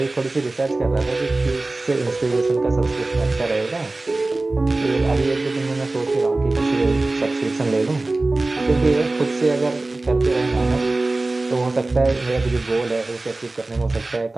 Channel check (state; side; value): quieter; left; 3.1 dB